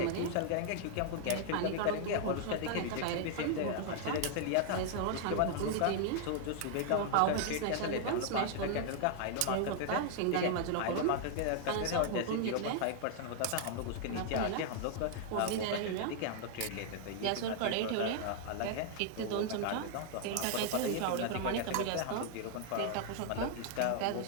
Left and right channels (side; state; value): both; different; correlation 0.00